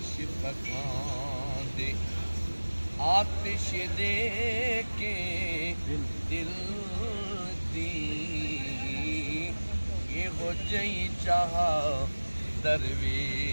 पकाते आतिश दे के दिल दी ये हो जई जहाँ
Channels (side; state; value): both; inverted; correlation -1.00